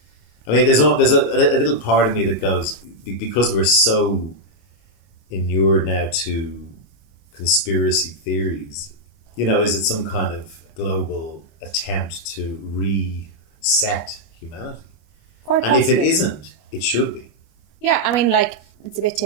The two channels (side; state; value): right; late; 25 ms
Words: I mean, there's a little part of me that goes, because we're so inured now to conspiracy theories, Is it some kind of global attempt to reset humanity? Quite And if it possibly. isn't, it should be. Yeah, I mean, like, it's a bit